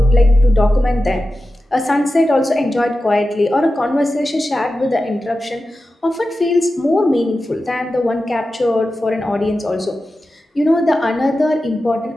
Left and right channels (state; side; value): normal; both; correlation 0.93